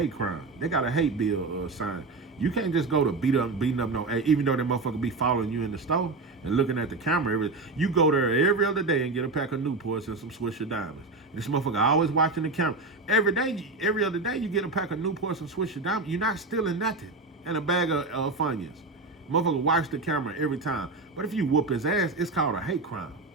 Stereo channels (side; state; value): left; quieter; 3.5 dB